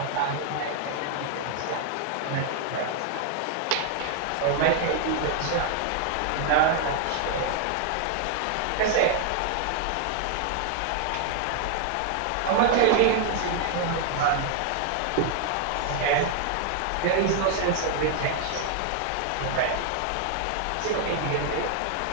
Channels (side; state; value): both; different; correlation 0.00